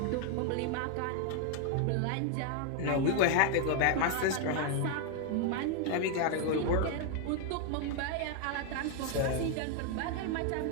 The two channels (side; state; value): both; different; correlation 0.00